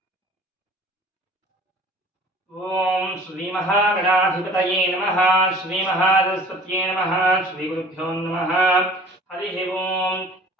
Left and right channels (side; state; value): both; normal; correlation 0.47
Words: ఓం శ్రీ మహాగణాధిపతయే నమః శ్రీ మహాసరస్వత్యే నమః శ్రీ గురుభ్యో నమః. హరి ఓం.